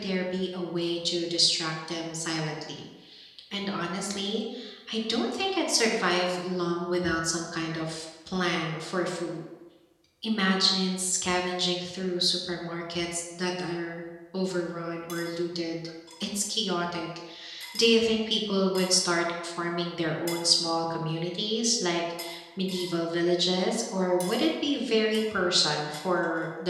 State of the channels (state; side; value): identical; both; correlation 1.00